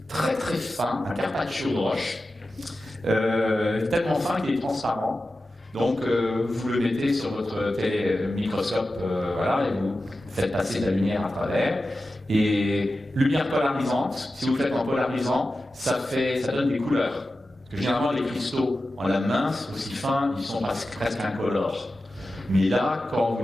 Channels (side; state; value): both; normal; correlation 0.93